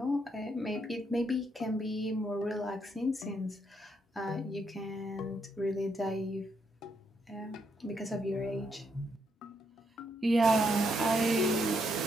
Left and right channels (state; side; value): normal; both; correlation 0.76